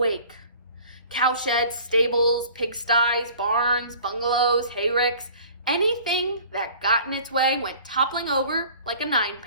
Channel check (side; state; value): both; inverted; correlation -0.48